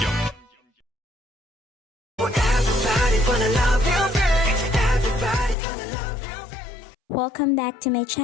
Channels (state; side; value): drops out; right; at 5.6 s